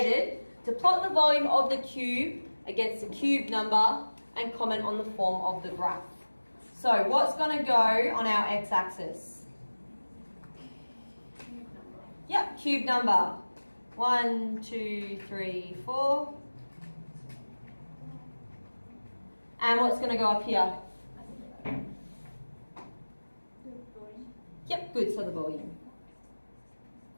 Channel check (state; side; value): inverted; both; correlation -1.00